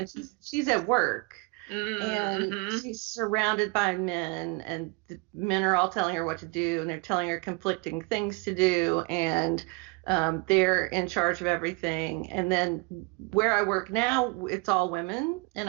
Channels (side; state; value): left; quieter; 28.1 dB